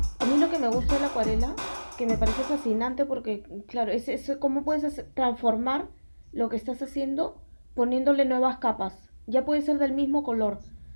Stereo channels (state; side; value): inverted; both; correlation -1.00